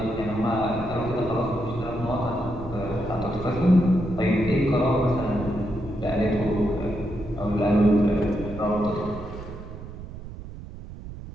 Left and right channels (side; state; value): right; noise; rumble, 12 dB below the sound